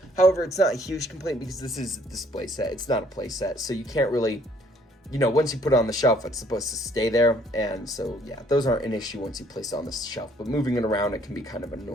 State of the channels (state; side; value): normal; both; correlation 0.62